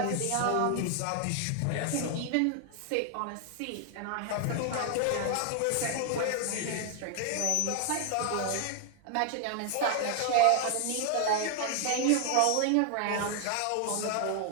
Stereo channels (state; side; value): different; both; correlation 0.00